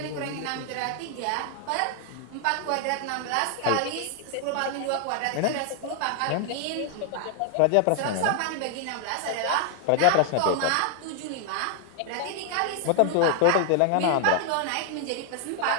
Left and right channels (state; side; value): different; both; correlation 0.00